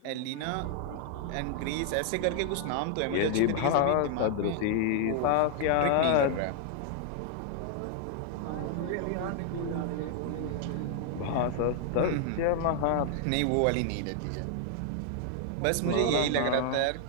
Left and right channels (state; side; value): different; both; correlation 0.00